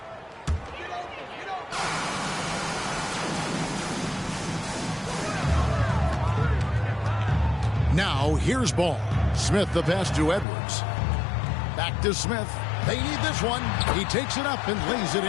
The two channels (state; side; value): drops out; right; at 10.5 s